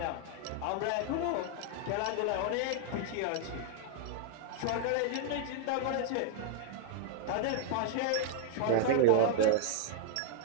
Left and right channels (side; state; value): both; different; correlation 0.00